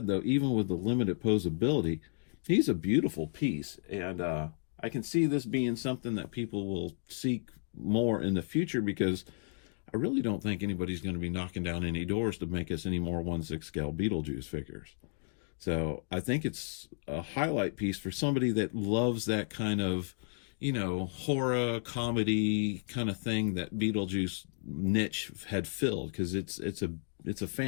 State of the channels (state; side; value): silent; right; digital silence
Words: though, even with the limited posability, he's a beautiful piece. And I can see this being something that people will seek more in the future, because I really don't think anybody's going to be knocking down any doors to make us any more 1/6 scale Beetlejuice figures. So I think it's a highlight piece for somebody that loves that kind of, horror comedy kind of thing that Beetlejuice niche had filled, because it's a